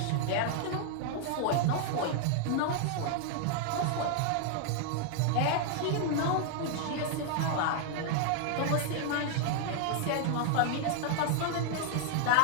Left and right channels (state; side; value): different; both; correlation 0.00